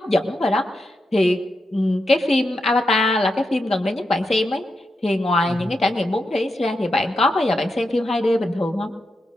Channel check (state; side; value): normal; both; correlation 0.86